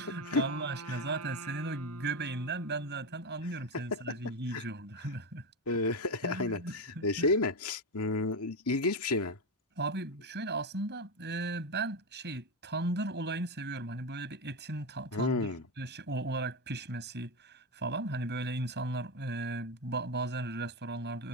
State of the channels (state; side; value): normal; both; correlation 0.12